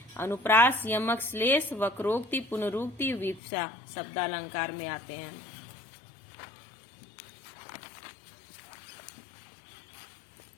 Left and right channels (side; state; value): right; drops out; at 3.4 s